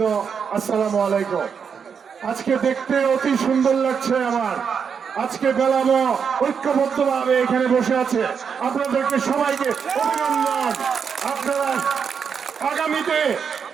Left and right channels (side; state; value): left; quieter; 6.6 dB